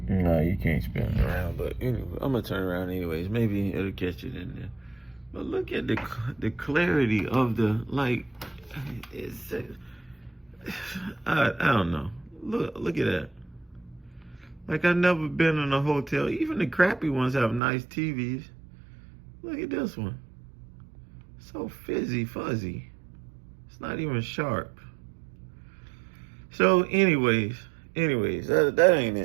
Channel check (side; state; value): left; drops out; at 17.6 s